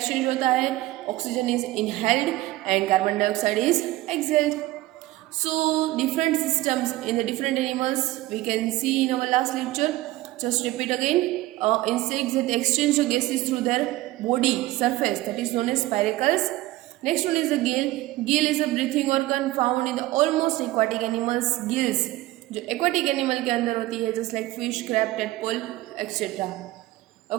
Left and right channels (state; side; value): quieter; left; 17.6 dB